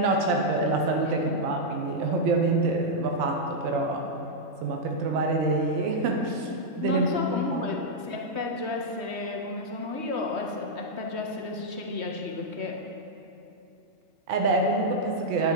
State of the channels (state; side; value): late; left; 3.2 ms